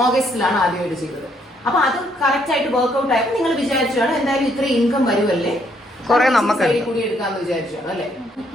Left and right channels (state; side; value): normal; both; correlation 0.70